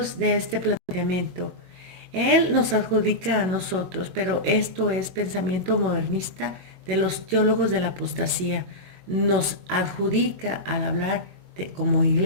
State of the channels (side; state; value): left; late; 22 ms